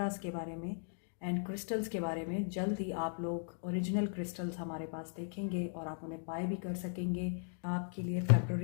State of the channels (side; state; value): right; silent; digital silence